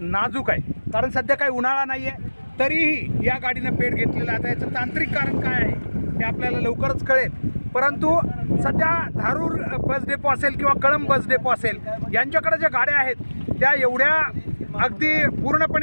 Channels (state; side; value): inverted; both; correlation -1.00